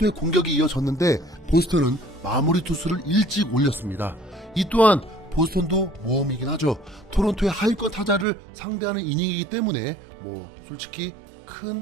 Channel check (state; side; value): drops out; left; at 8.2 s